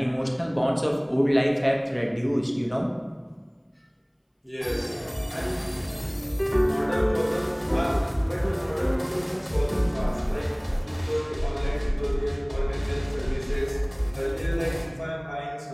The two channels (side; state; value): both; identical; correlation 1.00